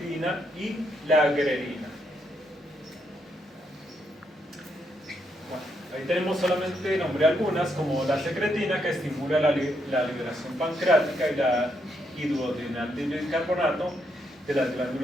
y la grelina. Bueno, ahí tenemos solamente nombré algunas, como la secretina, que estimula la liberación pancreática y la hidroadrenal de bicarbonato de las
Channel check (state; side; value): normal; both; correlation 0.78